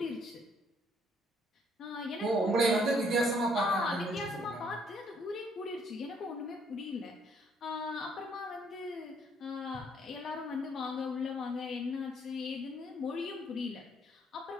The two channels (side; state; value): both; normal; correlation 0.66